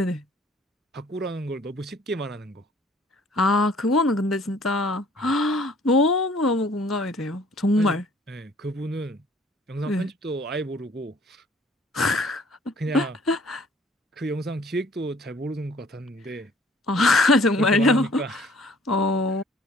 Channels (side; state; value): both; normal; correlation 0.56